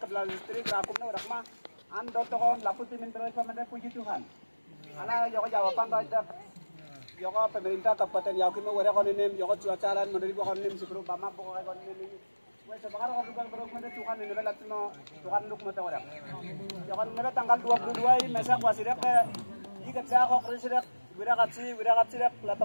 kepala distrik akumna warakma ando tokon laputi minta pamanda puji Tuhan. Ala joko jawaban tojak joko pemerintah kabupaten Yaukimo warakon ini joko cuacalan menurut wakon ini sebelum bama pokoknya kon ini. Wes sekarang kalau bukan berok mende Tuhan ini belat no Tuhan nuk mata warak. Joko nebe tanggal 22 mesak wasidak ikat sa kok risidak wirakatsi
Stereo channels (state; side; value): inverted; both; correlation -1.00